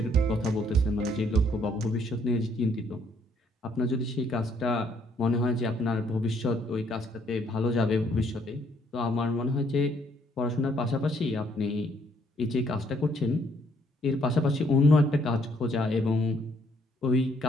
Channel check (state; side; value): normal; both; correlation 0.67